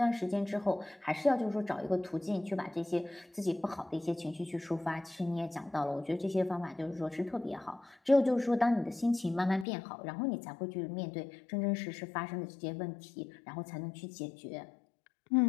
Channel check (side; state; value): right; drops out; at 9.7 s